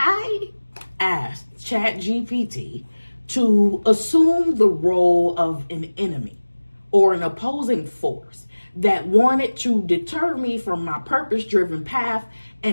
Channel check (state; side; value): inverted; both; correlation -1.00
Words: asked Chat GPT to assume the role of an enemy or an opposing force that wanted to deter me from my purpose-driven path,